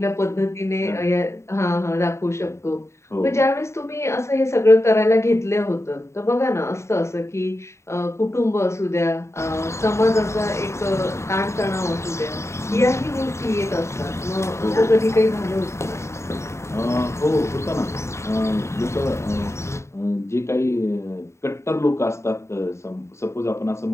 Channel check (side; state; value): right; late; 0.14 ms